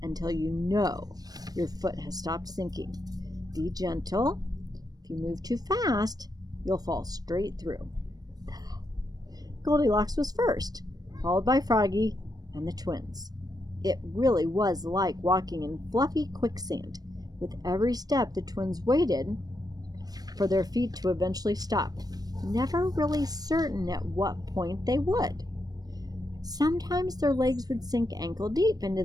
until you know your foot has stopped sinking. Be gentle. If you move too fast, you'll fall straight through. Goldilocks was first, followed by Froggy and the twins. It really was like walking in fluffy quicksand. With every step, the twins waited for their feet to eventually stop, never really certain at what point they would. Sometimes their legs would sink ankle deep into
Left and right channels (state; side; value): late; left; 0.19 ms